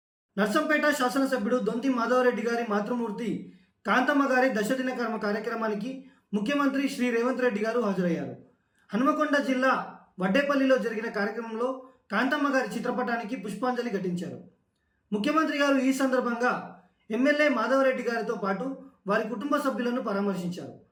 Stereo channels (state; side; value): identical; both; correlation 1.00